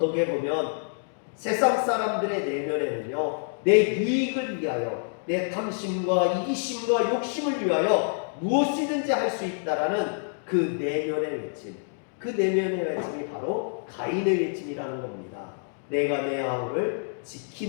보면 세상 사람들의 내면에는요, 내 유익을 위하여, 내 탐심과 이기심과 욕심을 위하여 무엇이든지 할 수 있다라는 그 내면의 외침, 그 내면의 외침이 바로 가인의 외침이라는 겁니다. 내가 내 아우를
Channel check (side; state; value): right; silent; digital silence